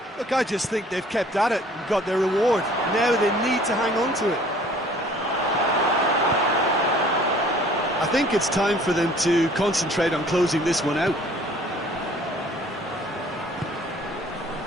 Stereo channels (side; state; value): both; normal; correlation 0.54